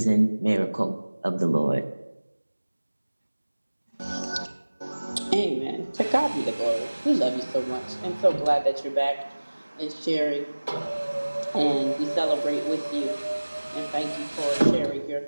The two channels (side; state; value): both; inverted; correlation -1.00